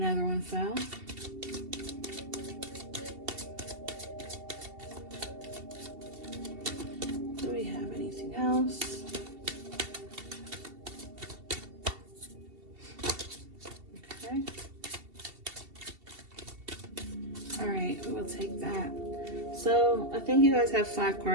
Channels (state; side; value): late; left; 2.7 ms